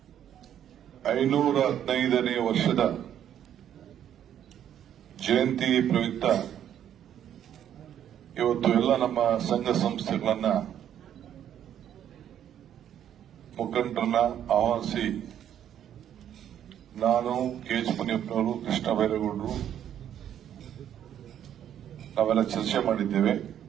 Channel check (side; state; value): left; quieter; 10.1 dB